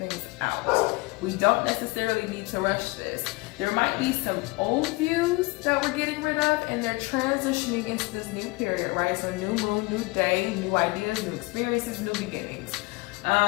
out. We don't necessarily need to rush this. There might be some old views that we're getting rid of, and they're transitioning into this new period, right? So new moon, new day, new ideas, new experiences, new beginnings.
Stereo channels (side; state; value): right; quieter; 24.5 dB